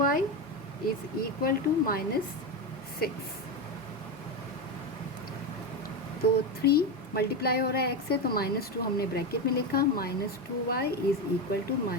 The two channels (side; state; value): both; normal; correlation 0.14